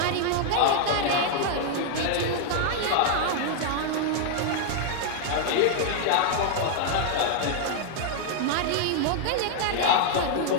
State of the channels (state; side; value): different; both; correlation 0.00